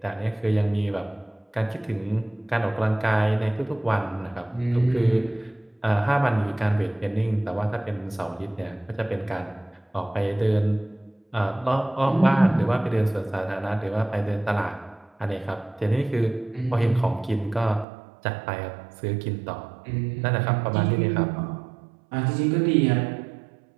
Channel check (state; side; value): drops out; left; at 17.9 s